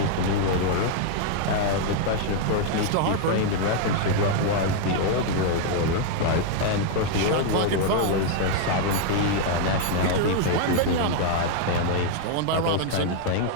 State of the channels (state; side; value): different; both; correlation 0.00